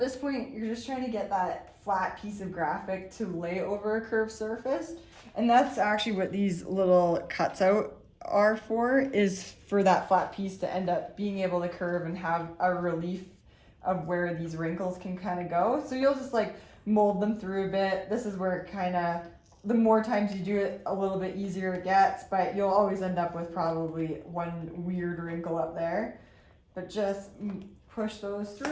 point, you're just trying to get that flat piece of graphic to lay over a curved surface. And that's actually what these little cuts out are for, is for that flat piece to end up being able to curve and have a relief of where these wrinkles can kind of go. So you'll just like mold them through a bit. This is where it kind of, the more times you do it, a little bit easier it gets, but you'll always end up with probably one weird wrinkle up there. But just push those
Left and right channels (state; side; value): identical; both; correlation 1.00